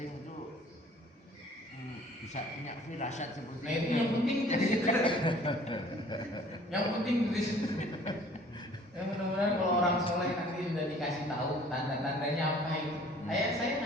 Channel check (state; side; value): normal; both; correlation 0.53